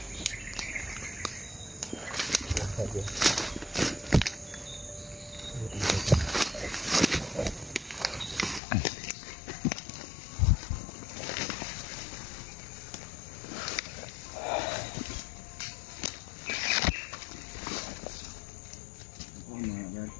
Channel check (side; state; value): right; drops out; at 8.6 s